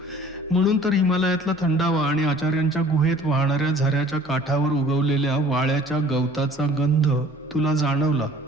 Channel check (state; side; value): normal; both; correlation 0.51